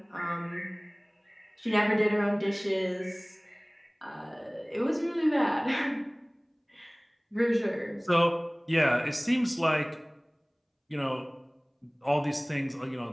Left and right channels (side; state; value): both; identical; correlation 1.00